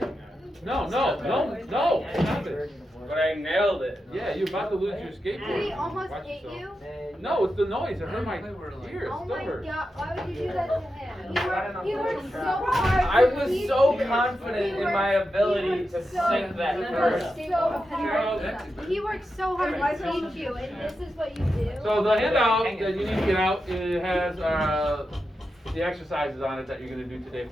No, stop it. But I nailed it. Yeah, you're about to lose your Did skateboard. he almost Watch hit yourself. you? No, it's the noise. It hurt my ear. Oh It my still hurts. god, why would you do that to him? You worked so hard. I to was teach so you. confident You in worked- my ability you to worked so- sing that you verse. worked so Well, hard. that's- He worked so hard to teach you, and this is what you do. So the handout that you need to get out, it has the exercises on it that you're going to do today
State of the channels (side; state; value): both; normal; correlation 0.89